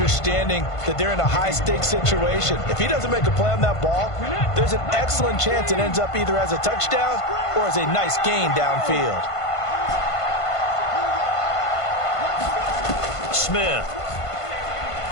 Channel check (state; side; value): late; right; 1.5 ms